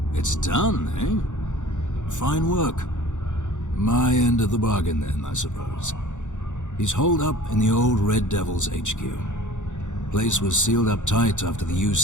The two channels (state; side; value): late; right; 0.85 ms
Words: It's done, eh? Fine work. My end of the bargain then, I suppose. He's holed up in the old Red Devil's HQ. Place was sealed up tight after the